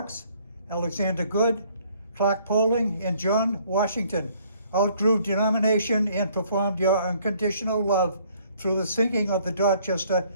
Alexander Good, Clark Poling, and John Washington. Outgrew denomination and performed your unconditional love through the sinking of the Dorchester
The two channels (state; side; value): inverted; both; correlation -0.62